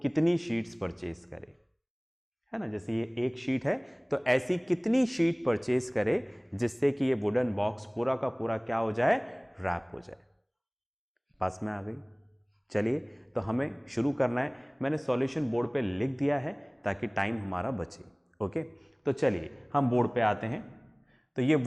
कितनी शीट्स परचेज करे, है ना। जैसे ये एक शीट है, तो ऐसी कितनी शीट परचेज करे जिससे कि ये वुडन बॉक्स पूरा का पूरा क्या हो जाए, रैप हो जाए। पास में आ गई। चलिए तो हमें शुरू करना है। मैंने सॉल्यूशन बोर्ड पे लिख दिया है ताकि टाइम हमारा बचे। ओके, तो चलिए हम बोर्ड पे आते हैं। तो ये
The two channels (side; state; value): both; identical; correlation 1.00